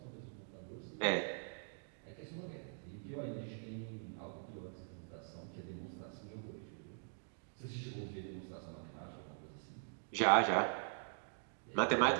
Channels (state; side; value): silent; left; digital silence